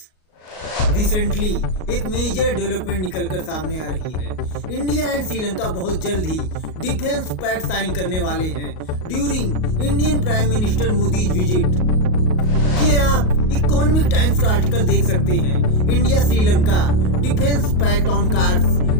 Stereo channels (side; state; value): right; late; 38 ms